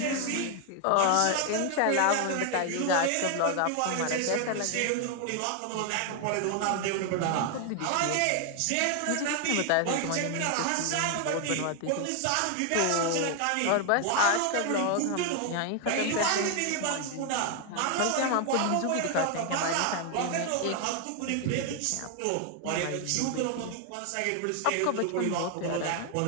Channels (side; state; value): both; different; correlation 0.00